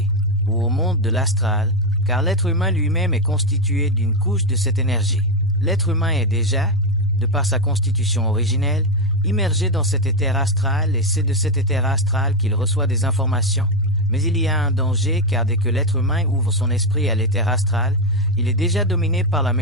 ou au monde de l'astral, car l'être humain lui-même est constitué d'une couche de cette énergie. L'être humain est déjà, de par sa constitution originelle, immergé dans cet éther astral et c'est de cet éther astral qu'il reçoit des informations. Mais il y a un danger car dès que l'être humain ouvre son esprit à l'éther astral, il est déjà dominé par la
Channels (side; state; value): both; normal; correlation 0.08